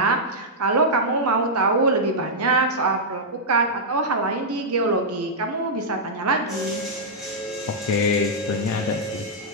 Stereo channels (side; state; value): both; normal; correlation -0.08